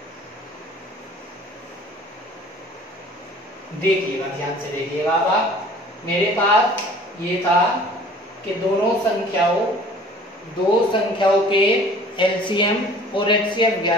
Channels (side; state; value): both; normal; correlation 0.49